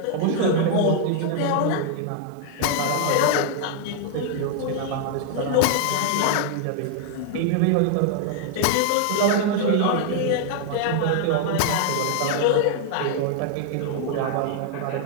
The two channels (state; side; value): different; both; correlation 0.00